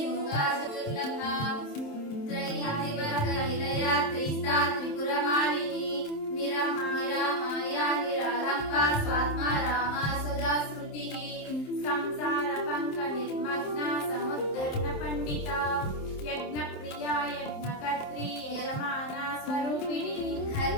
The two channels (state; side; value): late; right; 27 ms